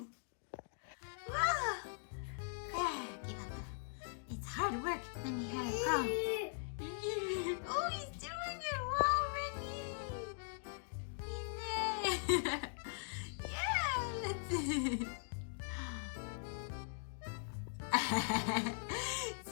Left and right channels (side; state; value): right; silent; digital silence